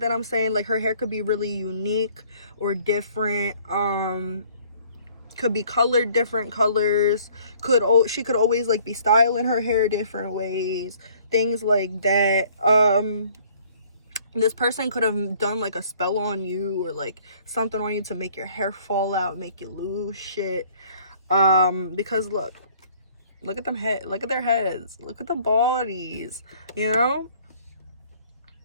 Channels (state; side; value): inverted; both; correlation -0.58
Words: I'm saying. Like, her hair could be really unique or different. Could be colored different colors. She could always like be styling her hair different ways, things like that. This person could have done like a spell on you, or like something on you to make your hair fall out, make you lose shit. Because look at them look at their heads, look at the bodies, you know.